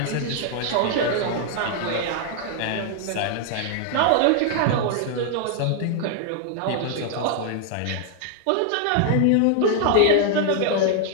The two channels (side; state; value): both; different; correlation 0.00